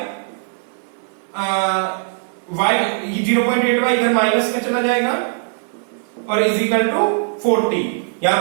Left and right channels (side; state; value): left; silent; 57 dB below the other